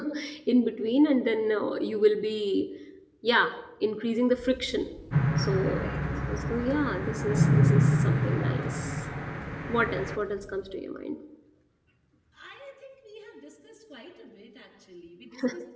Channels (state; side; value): identical; both; correlation 1.00